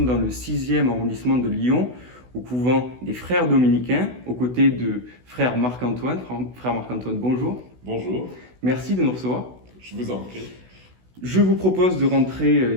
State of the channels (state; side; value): late; left; 16 ms